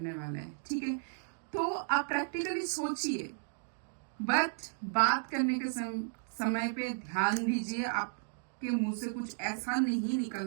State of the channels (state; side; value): silent; left; digital silence